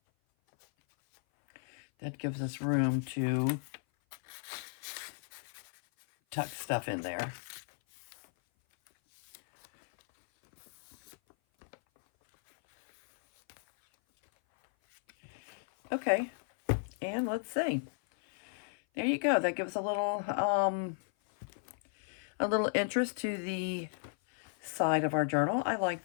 That gives us room to tuck stuff in there. Okay, and let's see. There you go. That gives a little interest to the side of our journal. I like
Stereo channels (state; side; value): silent; right; 55 dB below the other